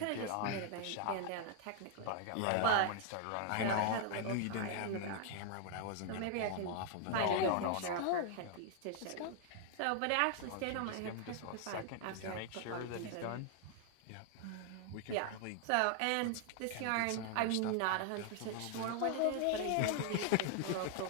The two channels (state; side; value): different; both; correlation 0.00